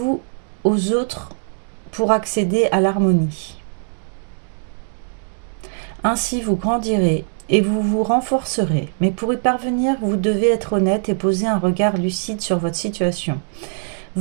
aux autres pour accéder à l'harmonie. Ainsi vous grandirez et vous vous renforcerez. Mais pour y parvenir, vous devez être honnête et poser un regard lucide sur votre situation,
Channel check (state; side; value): silent; left; digital silence